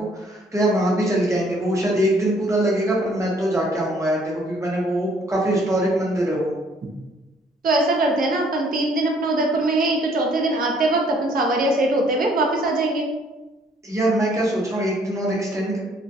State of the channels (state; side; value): normal; both; correlation 0.62